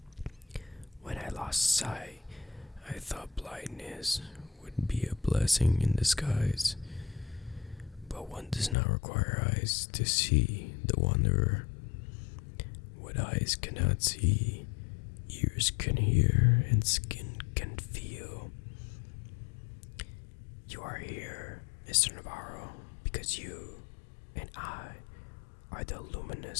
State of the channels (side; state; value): right; drops out; at 8.8 s